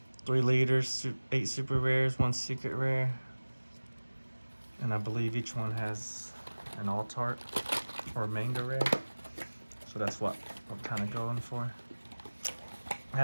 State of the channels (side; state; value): both; inverted; correlation -1.00